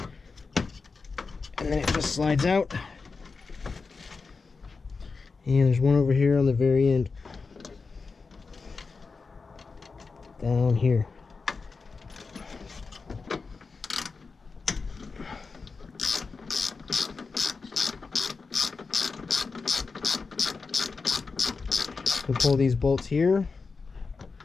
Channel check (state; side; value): quieter; right; 4.5 dB